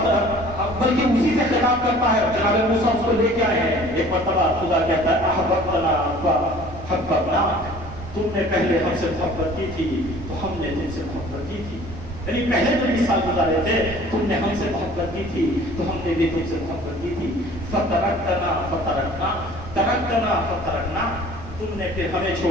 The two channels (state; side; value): noise; right; rumble, 15 dB below the sound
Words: بلکہ اسی سے خطاب کرتا ہے، جناب موسیٰ اس کو لے کے آئے ہیں۔ ایک مرتبہ خدا کہتا ہے احببتنا فحببناک، تم نے پہلے ہم سے محبت کی تھی تو ہم نے تم سے محبت کی تھی، یعنی پہلے جو 20 سال گزارے تھے تم نے ہم سے محبت کی تھی تو ہم نے بھی تم سے محبت کی تھی۔ فترکتنا فترکنا، ترکتنا فترکنا، تم نے پھر ہمیں